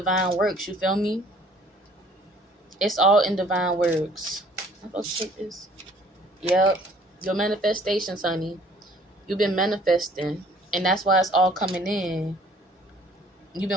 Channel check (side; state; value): both; normal; correlation 0.56